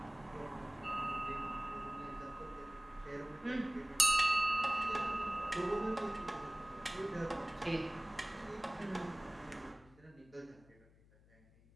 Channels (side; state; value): left; noise; hum, 26 dB below the sound